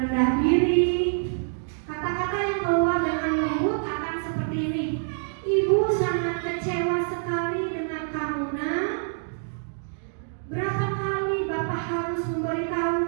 diri. Kata-kata yang keluar dengan lembut akan seperti ini. Ibu sangat kecewa sekali dengan kamu, Nak. Berapa kali Bapak harus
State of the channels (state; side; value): silent; left; digital silence